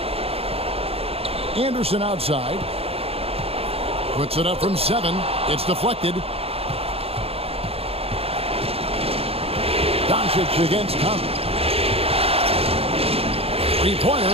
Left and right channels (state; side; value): late; left; 0.28 ms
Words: Anderson outside. Puts it up from 7. It's deflected. Doncic against Conley.